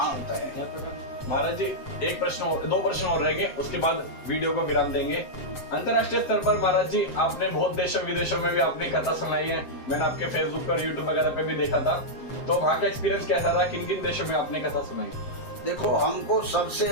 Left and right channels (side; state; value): right; late; 7.7 ms